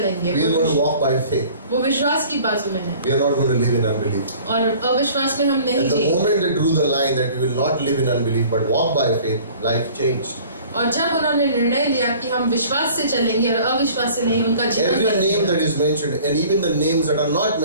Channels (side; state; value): both; inverted; correlation -0.49